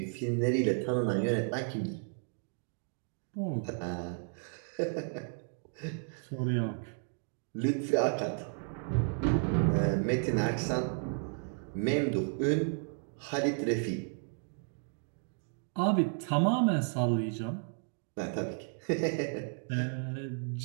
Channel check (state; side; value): silent; left; 56 dB below the other